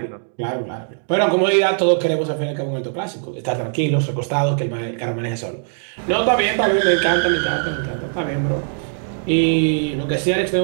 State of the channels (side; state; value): left; silent; digital silence